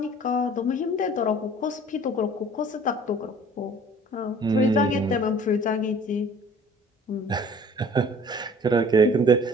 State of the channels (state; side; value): normal; both; correlation 0.50